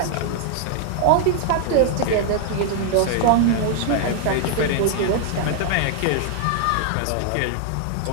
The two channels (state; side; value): different; both; correlation 0.00